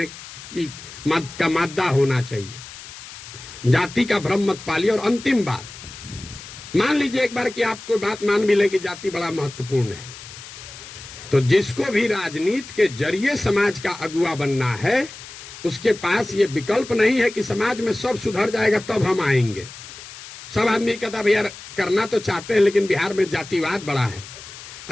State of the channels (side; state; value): left; noise; hiss, 15 dB below the sound